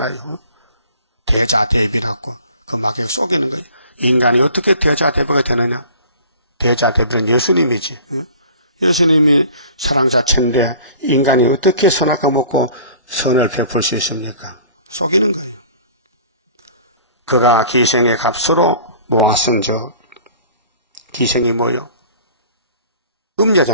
대자대비라고 그 마귀가 속이는 거예요. 인간이 어떻게 대자대비가 되느냐? 대자대비는 예수님이지. 예수님이 사랑 자체인데 인간이 어떻게 선악과 먹고 선을 베풀 수 있습니까? 속이는 거예요. 그가 기생의 값으로 모았은즉 기생이 뭐요?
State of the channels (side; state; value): both; inverted; correlation -0.47